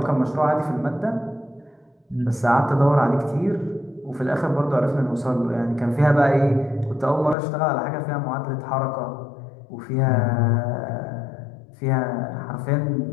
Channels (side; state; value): right; drops out; at 7.4 s